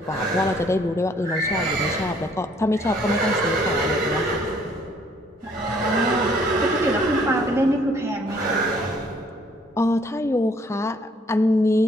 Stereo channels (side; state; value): both; normal; correlation 0.63